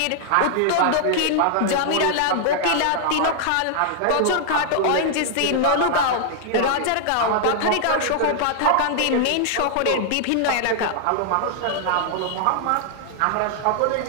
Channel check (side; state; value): both; different; correlation 0.00